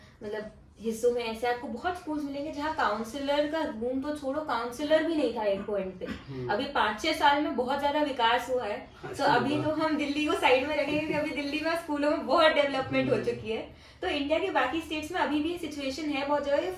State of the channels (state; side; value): identical; both; correlation 1.00